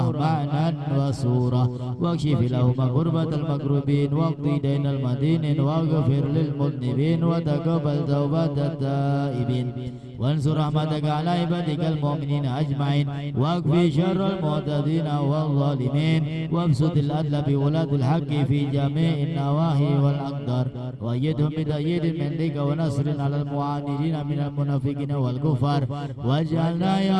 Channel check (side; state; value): both; identical; correlation 1.00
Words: معنى وصورة واكشف لهم غربة المكروبين واقضي دين المدينين واغفر للمذنبين وتقبل توبة التائبين وانصر رحمتك على عبادك المؤمنين أجمعين واكفي شر المعتدين والظالمين وابسط العدل بولاة الحق في جميع النواحي والأقدار وأيدهم بتأييد منك ونصر على المعاندين من المنافقين والكفار واجعلنا